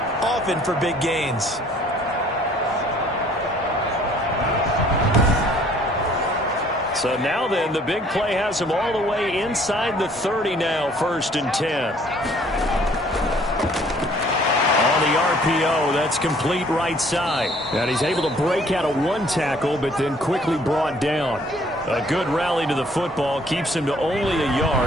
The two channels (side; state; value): both; normal; correlation 0.58